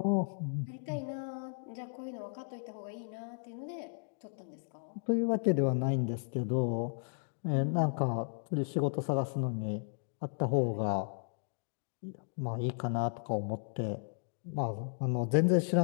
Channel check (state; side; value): silent; right; digital silence